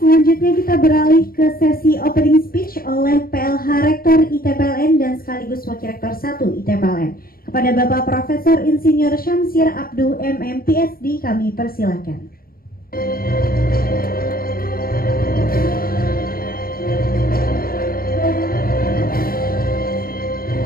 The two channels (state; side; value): late; right; 0.43 ms